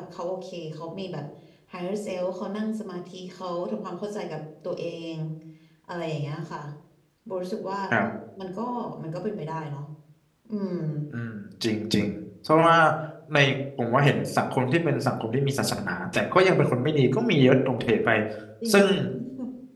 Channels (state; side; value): identical; both; correlation 1.00